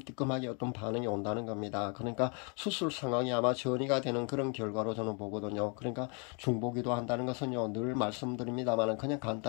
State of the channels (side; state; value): right; quieter; 36.3 dB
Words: 어떤 반응이 온다는 겁니다. 그러니까 수술 상황이 아마 전이가 되는 그런 결과로 저는 보거든요. 그러니까 중보기도 한다는 것은요, 늘 말씀드립니다만 그냥